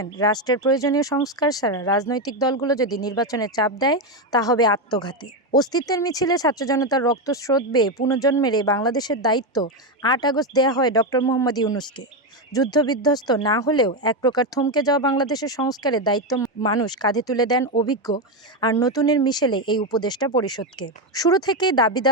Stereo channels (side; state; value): both; normal; correlation 0.09